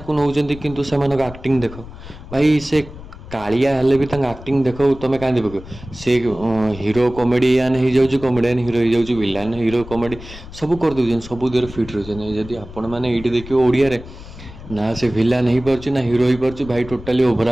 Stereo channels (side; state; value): left; noise; rumble, 15 dB below the sound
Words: नौकरी किंतु से एक्टिंग देख भाई से कालिया हेले भी एक्टिंग देख तुम क्या पक से हीरो कॉमेडियन हो जाऊँ कॉमेडियन हीरो हो जाऊँ विलान हीरो कॉमेडी सब कर दे सब देर फिट रही जदि आपण मैंने ये देखिए ओडिया रे ना से विलान हो पार्छ ना हीरो हो पार्छ भाई टोटाली ओभर